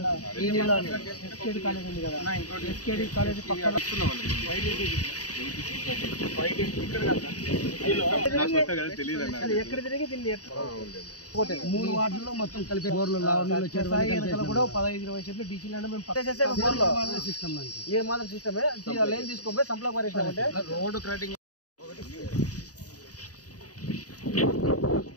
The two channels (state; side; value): late; right; 0.67 ms